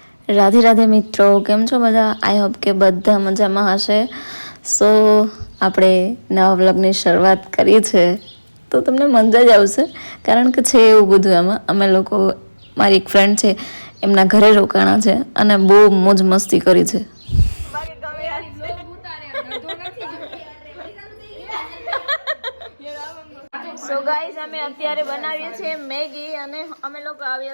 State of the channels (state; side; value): inverted; both; correlation -1.00